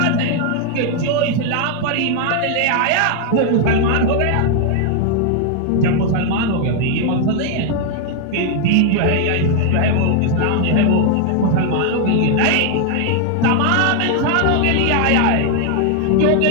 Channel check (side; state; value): both; different; correlation 0.00